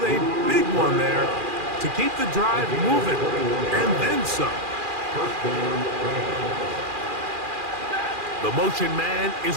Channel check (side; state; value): left; late; 2.4 ms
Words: a big one there to keep the drive moving. And then some. The motion man is